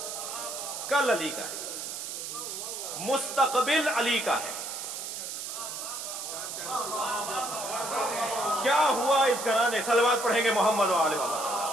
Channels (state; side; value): noise; right; hiss, 6 dB below the sound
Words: کل علی کا ہے, مستقبل علی کا ہے. کیا ہوا اس گھرانے, صلوات پڑھیں گے محمد و آل محمد.